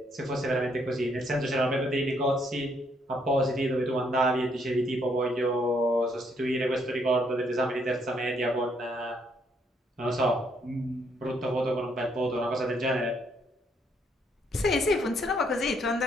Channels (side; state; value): both; normal; correlation 0.71